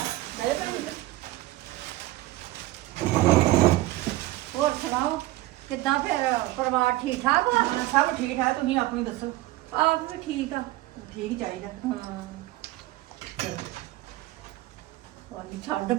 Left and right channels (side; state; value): left; quieter; 17.7 dB